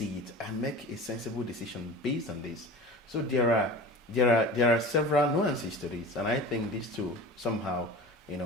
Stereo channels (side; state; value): both; normal; correlation 0.36